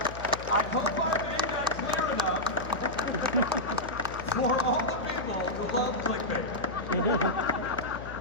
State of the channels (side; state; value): left; noise; hum, 12 dB below the sound